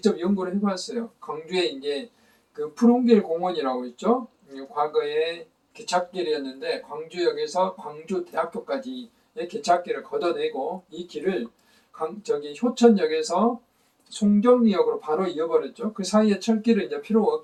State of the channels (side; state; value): both; identical; correlation 1.00